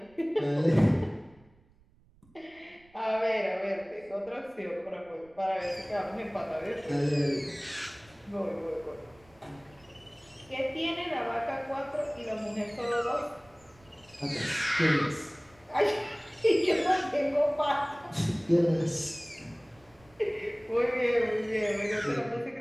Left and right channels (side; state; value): right; noise; rumble, 29 dB below the sound